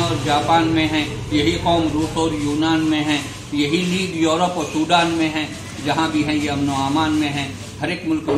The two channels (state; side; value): identical; both; correlation 1.00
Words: और जापान में हैं, यही कौम रूस और यूनान में है, यही लीग यूरोप और सूडान में है, जहाँ भी हैं ये अमन व अमान में हैं। हर एक मुल्क